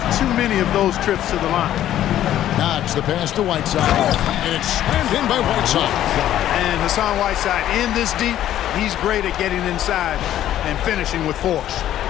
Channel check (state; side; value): quieter; right; 12.1 dB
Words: too many of those trips to the line. Knox the pass to Whiteside, and it's slammed in by Whiteside. And Hassan Whiteside in this deep, he's great at getting inside and finishing with force.